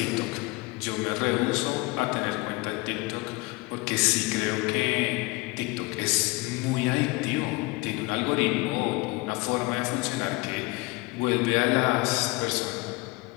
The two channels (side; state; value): right; quieter; 23.8 dB